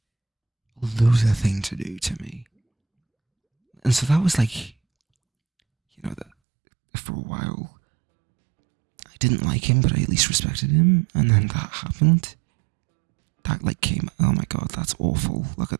a loser thing to do to me. And so that was like, you know, that for a while I didn't like him, but I at least respected him. And then that happened. That like came, oh my god, that's awful. Look at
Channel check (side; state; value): left; drops out; at 6.2 s